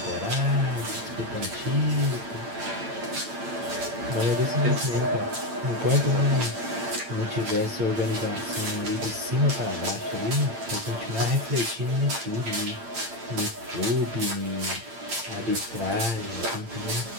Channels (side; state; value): left; late; 8.8 ms